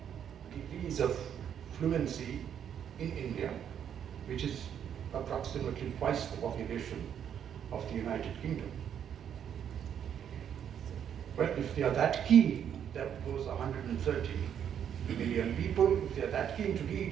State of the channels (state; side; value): quieter; left; 8.9 dB